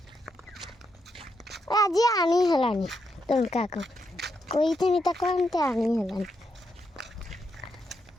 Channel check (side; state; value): both; normal; correlation 0.81